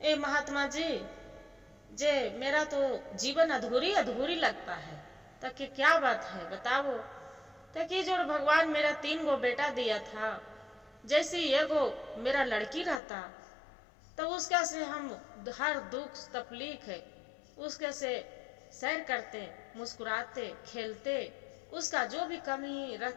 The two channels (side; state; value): right; drops out; at 13.0 s